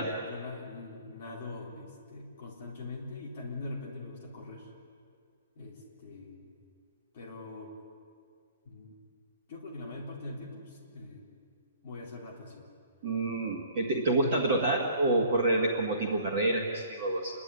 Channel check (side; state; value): both; inverted; correlation -0.54